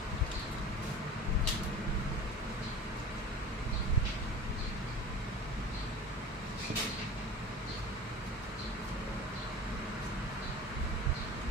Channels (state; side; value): normal; both; correlation 0.37